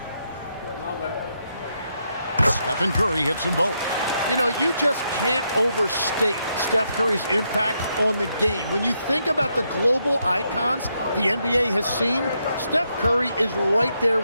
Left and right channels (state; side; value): inverted; both; correlation -0.80